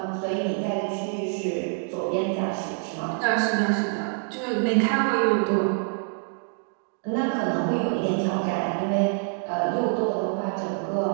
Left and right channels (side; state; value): left; silent; 56 dB below the other